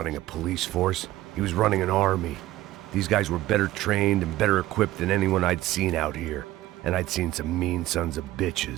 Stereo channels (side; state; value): left; quieter; 15.8 dB